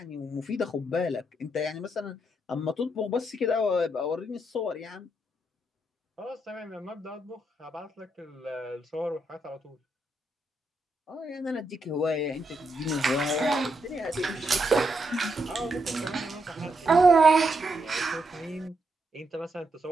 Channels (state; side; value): normal; both; correlation 0.80